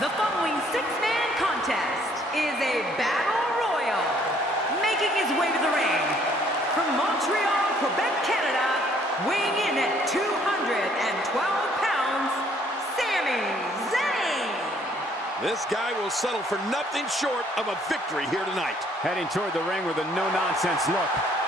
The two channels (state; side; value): normal; both; correlation 0.63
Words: following six-man contest is a battle royal. Making his way to the ring from Montreal, Quebec, Canada, weighing in at 212 pounds, Sami Zayn. This guy will settle for nothing short of a victory here tonight. Heading toward the ring with a no-nonsense look,